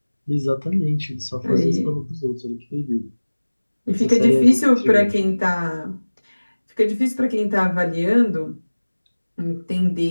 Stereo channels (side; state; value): both; inverted; correlation -1.00